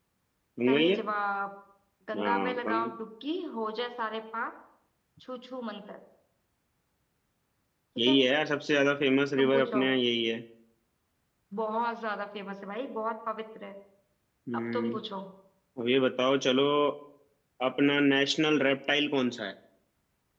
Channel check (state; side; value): identical; both; correlation 1.00